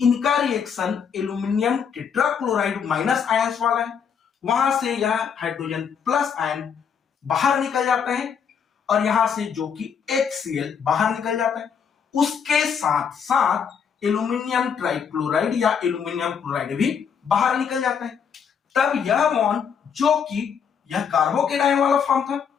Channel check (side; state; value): right; quieter; 7.0 dB